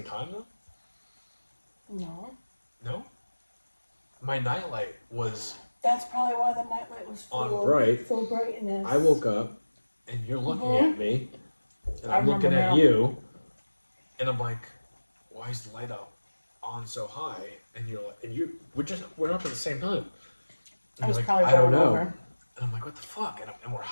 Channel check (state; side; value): inverted; both; correlation -1.00